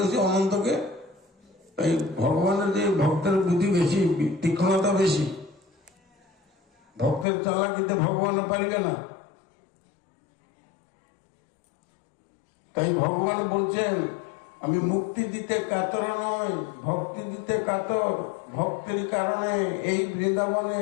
সে অনন্তকে। এই ভগবানের যে ভক্তের বুদ্ধি বেশি, তীক্ষ্ণতা বেশি। ভক্তের চালাকিতে ভগবান পারিবে না। তাই ভগবান বলছেন, আমি মুক্তি দিতে কাতর নয়, ভক্তি দিতে কাতর। ভক্তের কারণে এই বৃন্দাবনে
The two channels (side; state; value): right; drops out; at 7.2 s